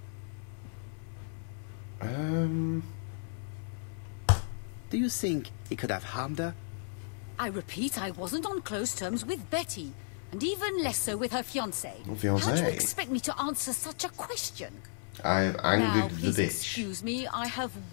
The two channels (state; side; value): silent; right; 55 dB below the other